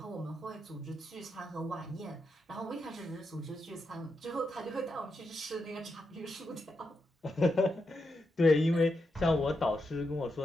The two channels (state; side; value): normal; both; correlation 0.85